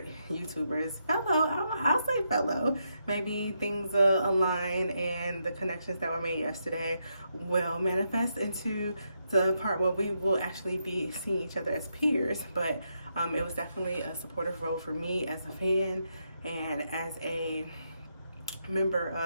I'll say fellow. Maybe things align and the connections that were made yesterday will manifest into the part where we will actually be seeing each other as peers. But it was definitely a supportive role for me as a fan and as a member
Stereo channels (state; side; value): inverted; both; correlation -0.81